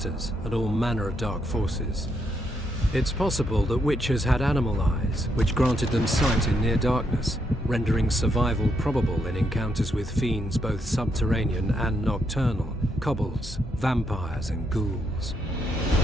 and all manner of dark forces. It's possible that Witchers had animal eyes, which granted them sight in near darkness, rendering survival probable in encounters with fiends both subterranean and nocturnal, kobolds, vampires, and ghouls.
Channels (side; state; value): both; normal; correlation 0.78